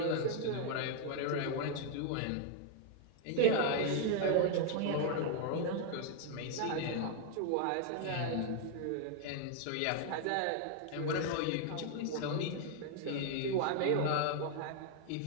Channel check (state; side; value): different; both; correlation 0.00